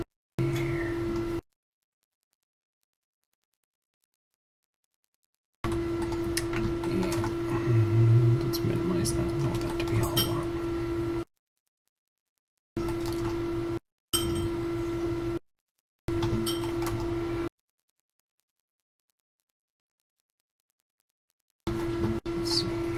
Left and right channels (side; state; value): both; identical; correlation 1.00